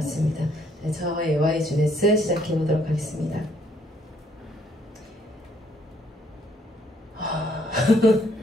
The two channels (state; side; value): normal; both; correlation 0.67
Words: 네, 저의 YGS 시작해보도록 하겠습니다.